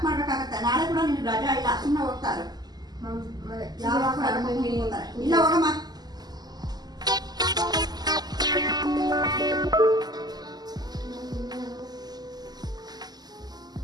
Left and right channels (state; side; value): late; left; 0.20 ms